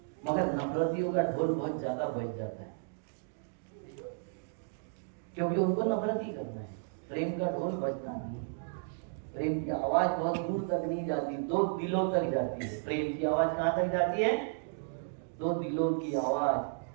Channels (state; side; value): silent; left; digital silence